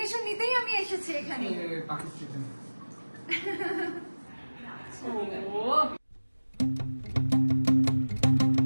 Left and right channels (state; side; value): inverted; both; correlation -1.00